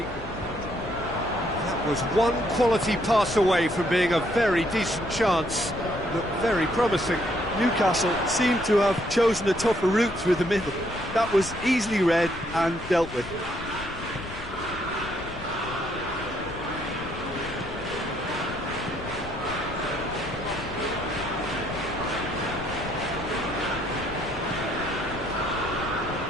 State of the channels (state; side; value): noise; left; rumble, 12 dB below the sound